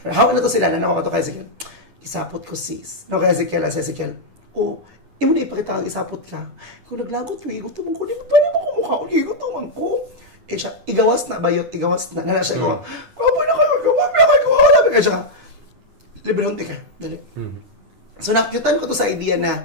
Hawa na to sila. Nanawa ka to kay sige. Isapot ko sis. No, kaya Ezekiel. Imo na ipakita ang isapot ka. Kung naglagot, igutom ko, di ba pa naman kumukha ko, igutom ko. Siya, igawas na. Nala siya ko, kapoy na kayo, wala ba kayo siya. Librehonti ka, dali. So, nakikitan ko to sa idea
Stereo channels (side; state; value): left; late; 9.7 ms